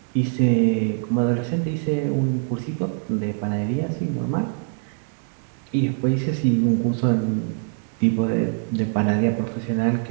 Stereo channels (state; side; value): silent; left; 63 dB below the other